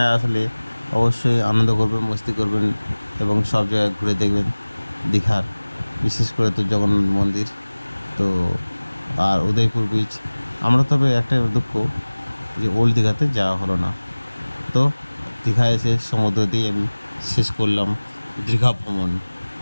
আসলে অবশ্যই আনন্দ করবেন, মস্তি করবেন এবং সব জায়গায় ঘুরে দেখবেন দীঘার, বিশেষ করে তো জগন্নাথ মন্দির তো আর উদয়পুর বিচ। আমরা তবে একটা দুঃখ যে ওল্ড দীঘাতে যাওয়া হলো না। তো দীঘা এসে সমুদ্র দিয়ে আমি শেষ করলাম দীঘা ভ্রমণ।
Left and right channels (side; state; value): both; inverted; correlation -1.00